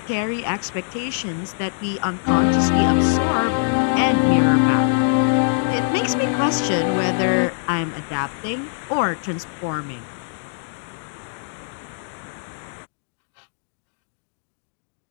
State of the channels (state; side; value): silent; right; digital silence